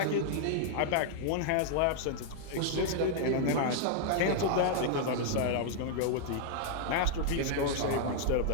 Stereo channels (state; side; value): different; both; correlation -0.01